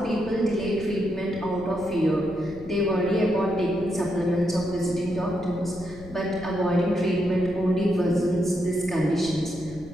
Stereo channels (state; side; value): noise; left; rumble, 17 dB below the sound